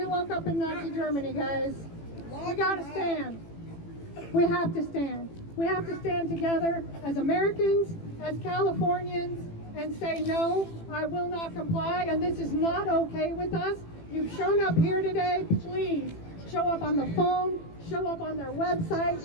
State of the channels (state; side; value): late; right; 18 ms